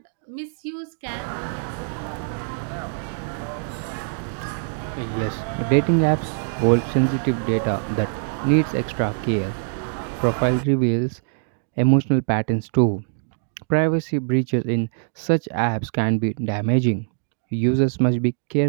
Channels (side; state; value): left; silent; digital silence